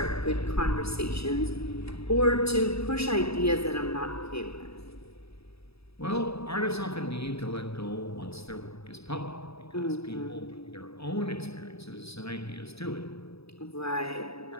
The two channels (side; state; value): right; late; 0.78 ms